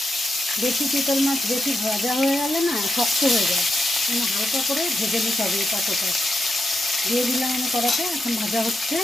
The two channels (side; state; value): both; normal; correlation 0.85